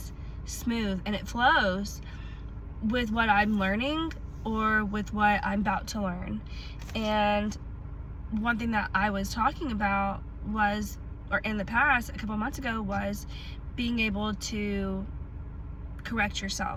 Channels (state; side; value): identical; both; correlation 1.00